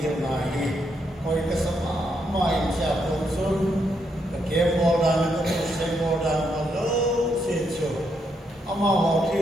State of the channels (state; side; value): normal; both; correlation 0.78